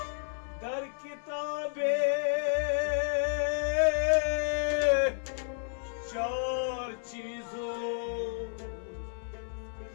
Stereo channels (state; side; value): silent; right; 57 dB below the other